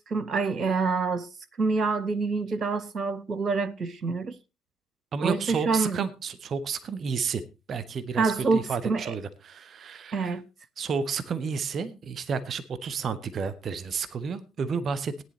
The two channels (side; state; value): left; quieter; 4.4 dB